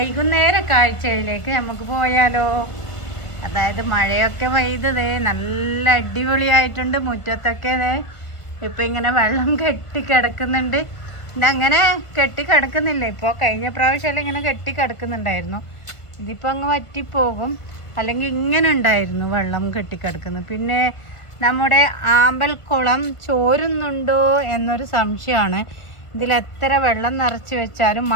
കാഴ്ചയിലേക്ക് നമുക്ക് പോയാലോ? അതായത് മഴയൊക്കെ പെയ്തതേ നല്ല അടിപൊളിയായിട്ടുണ്ട്. മുറ്റത്തൊക്കെ ഇപ്പം ഇങ്ങനെ വെള്ളം കെട്ടിക്കിടക്കുന്നുണ്ട്. ഇതങ്ങനെ കെട്ടിക്കിടക്കുന്നില്ല. ഇപ്പോൾ കഴിഞ്ഞ പ്രാവശ്യം ഇങ്ങനെ കെട്ടിക്കിടക്കുന്നുണ്ടായിരുന്നു. ഇതിപ്പോൾ അങ്ങ് വറ്റിപ്പോകും. അല്ലെങ്കിൽ ഇങ്ങനെ ഉണ്ടായിരുന്നു വെള്ളം കെട്ടിക്കിടക്കുന്നത്. പിന്നെ നമ്മുടെ ആമ്പൽക്കുളം ചോരുന്നുണ്ടോ എന്നൊരു സംശയമാണ്. ഇതിലെത്ര വെള്ളം നിറച്ച് വെച്ചാലും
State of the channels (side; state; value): right; late; 1.5 ms